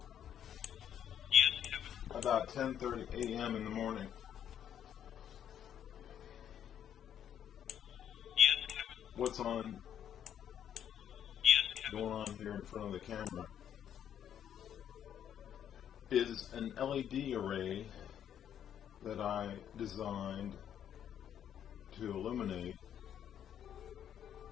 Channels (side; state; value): right; quieter; 9.6 dB